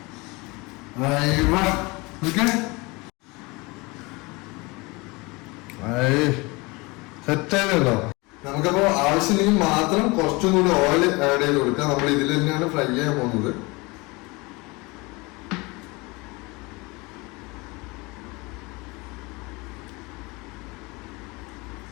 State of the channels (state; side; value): quieter; right; 25.2 dB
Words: സെറ്റായതല്ലോ. നമുക്കപ്പോ ആവശ്യമെങ്കിൽ മാത്രം കുറച്ചും കൂടി ഓയിൽ ആഡ് ചെയ്ത് കൊടുക്കാം. നമ്മൾ ഇതിൽ തന്നെയാണ് ഫ്രൈ ചെയ്യാൻ പോകുന്നത്.